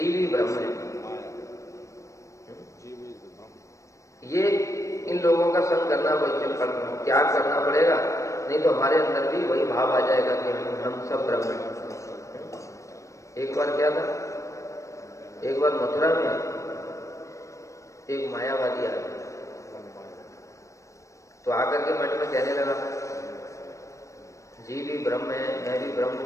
ही ब्रह्म है। ये इन लोगों का संग करना त्याग करना पड़ेगा, नहीं तो हमारे अंदर भी वही भाव आ जाएगा कि हम सब ब्रह्म हैं। एक बार क्या था, एक बार मथुरा में एक मायावादी आया, तो आकर के मठ में कहने लगा जीव भी ब्रह्म है, मैं भी ब्रह्म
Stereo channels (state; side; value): late; right; 0.15 ms